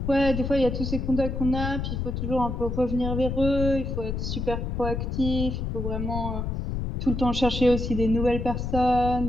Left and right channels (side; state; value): left; noise; rumble, 3 dB below the sound